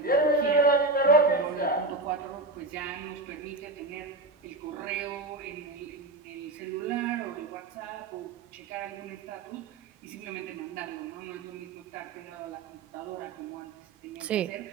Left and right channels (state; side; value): quieter; left; 3.2 dB